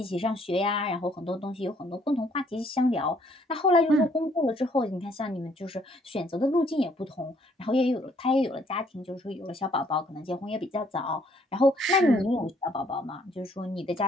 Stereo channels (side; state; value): both; normal; correlation 0.65